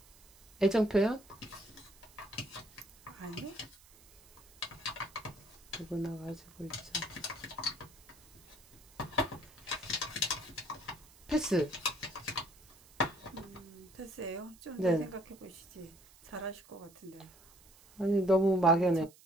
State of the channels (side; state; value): right; noise; hiss, 25 dB below the sound